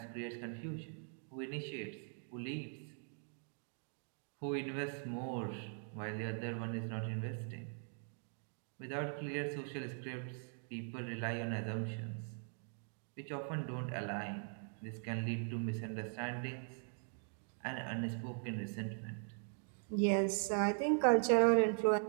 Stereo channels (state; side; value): silent; left; 50 dB below the other